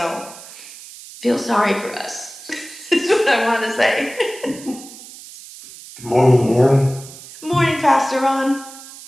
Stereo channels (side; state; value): right; noise; hiss, 17 dB below the sound